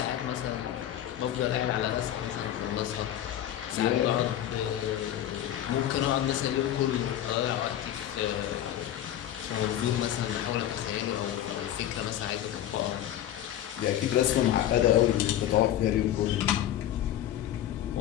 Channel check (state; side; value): quieter; right; 11.8 dB